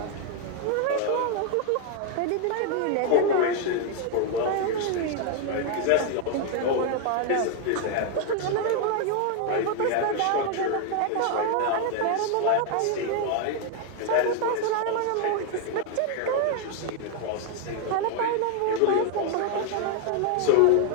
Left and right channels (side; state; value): both; different; correlation 0.00